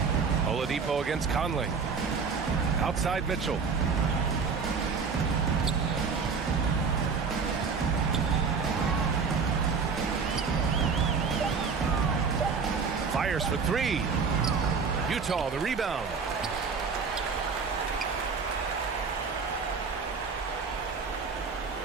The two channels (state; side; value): quieter; left; 5.4 dB